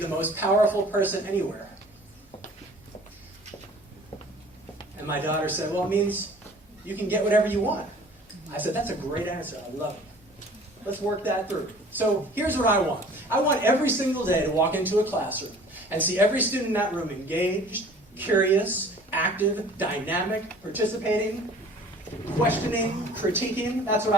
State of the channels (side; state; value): both; normal; correlation 0.49